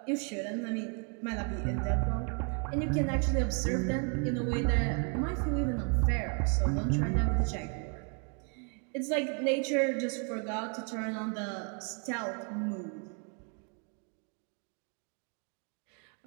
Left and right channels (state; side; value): quieter; left; 39.5 dB